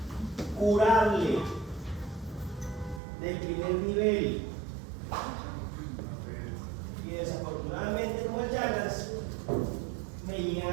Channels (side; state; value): left; drops out; at 3.0 s